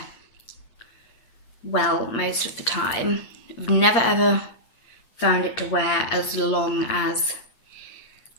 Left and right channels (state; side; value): late; right; 8.7 ms